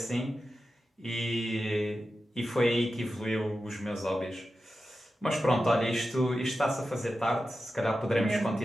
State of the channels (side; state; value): both; normal; correlation 0.92